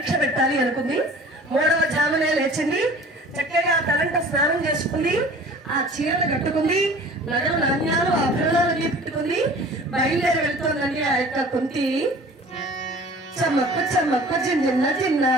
పెట్టాలి అనుకుంది. 3వ జామునే లేచింది. చక్కగా తలంట స్నానం చేసుకుంది, ఆ చీరలు కట్టుకుంది, నగలు నాణ్యాలు ఆభరణాలు పెట్టుకుంది, బయలుదేరి వెళ్తోందండి ఆ యొక్క కుంతి. చమ్మక్కు చమ్మక్కు జిన్న జిన్న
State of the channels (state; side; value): normal; both; correlation 0.45